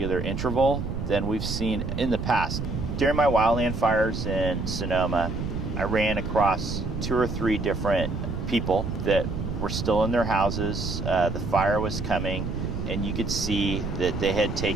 interval than we've seen in the past. During my wildland fires in Sonoma, I ran across 2 or 3 different people that were still in their houses. The fire was coming, and you could see that they had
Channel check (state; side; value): noise; right; rumble, 4 dB below the sound